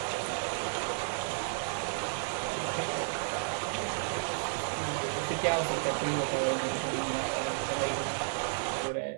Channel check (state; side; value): silent; left; 56 dB below the other